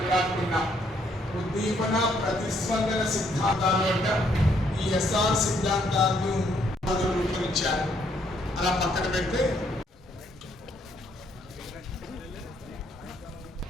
ఉద్దీపన ప్రతిస్పందన సిద్ధాంతాలు అంటే ఈ ఎస్ఆర్ సిద్ధాంతాలను రూపొందించారు. అలా పక్కన పెడితే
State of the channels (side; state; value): both; normal; correlation 0.70